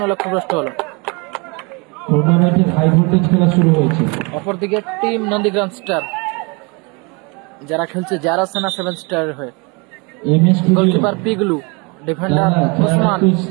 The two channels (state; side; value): quieter; left; 29.8 dB